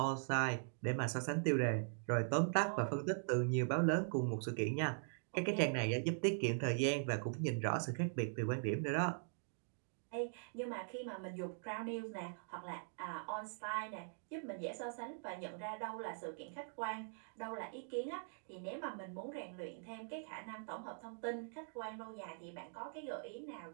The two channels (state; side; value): silent; left; digital silence